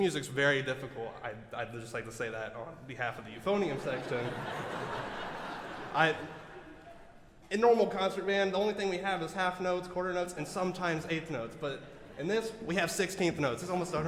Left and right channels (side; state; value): both; identical; correlation 1.00